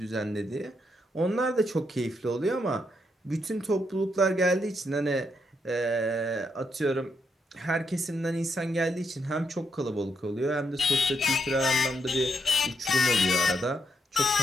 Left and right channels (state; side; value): normal; both; correlation 0.79